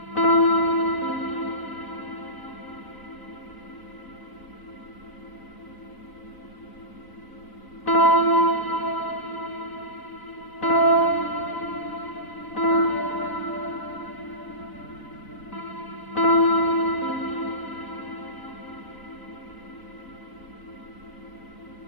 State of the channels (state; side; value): late; right; 4.0 ms